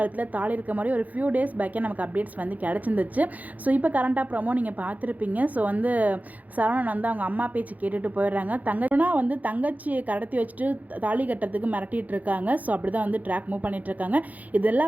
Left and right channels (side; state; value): left; late; 0.078 ms